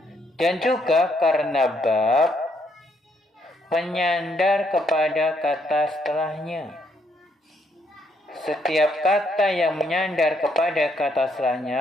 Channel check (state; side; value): normal; both; correlation 0.73